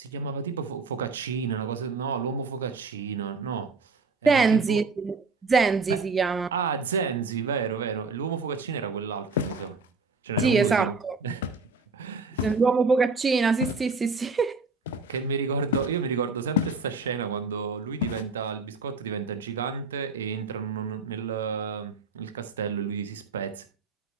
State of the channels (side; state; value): left; quieter; 4.0 dB